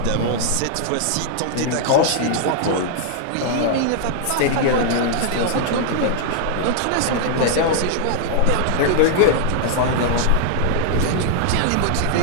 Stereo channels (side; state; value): both; different; correlation 0.00